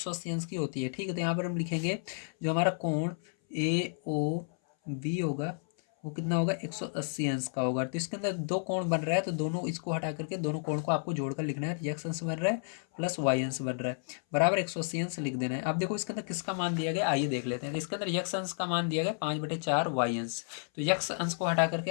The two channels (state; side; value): silent; right; 57 dB below the other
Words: अंश की होती है। ठीक है, तो यहाँ पर हम लिखेंगे जो हमारा कोण ए ओ बी होगा वो कितना होगा 180 अंश का होगा। तो इसके अंदर दो कोण बन रहा है, तो दोनों इसको हटा करके दोनों कोण को आपको जोड़कर लिखना है। एक्स अंश बन रहा है प्लस वाई अंश बन रहा है बराबर 180 अंश लिख देना है। अब देखो इसके अंदर किसका मान दिया गया, आइए देख लेते हैं। तो इसके अंदर यक्स अंश का मान दिया गया 5/4 वाई अंश। तो यक्स अंश को हटा करके